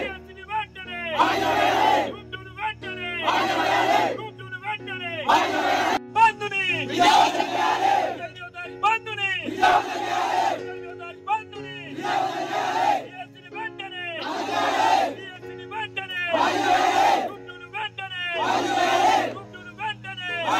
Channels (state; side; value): identical; both; correlation 1.00